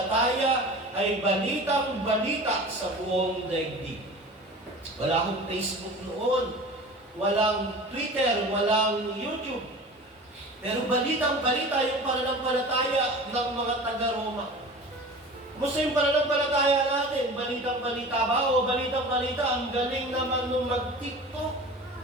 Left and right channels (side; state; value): both; normal; correlation 0.38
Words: ay balitang-balita sa buong daigdig. Wala akong Facebook noon, walang Twitter, walang YouTube. Pero balitang-balita yung pananampalataya ng mga taga-Roma. Kumusta yung pananampalataya natin? Balitang-balita ba? O balitang-balita, ang galing naman nung mag-TikTok.